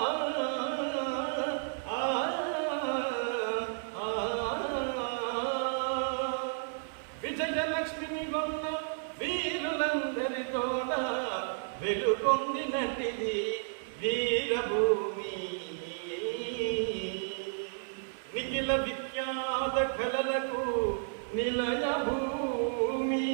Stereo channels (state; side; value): silent; left; digital silence